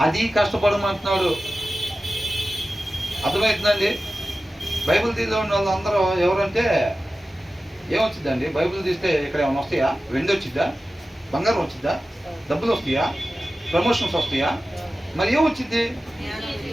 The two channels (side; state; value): both; normal; correlation 0.95